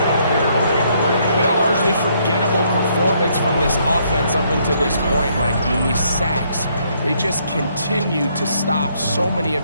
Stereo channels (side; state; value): both; inverted; correlation -0.70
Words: Been a largely forgettable performance from this offense up until this point. Like, I mean, these sacks, they just continue to stop so many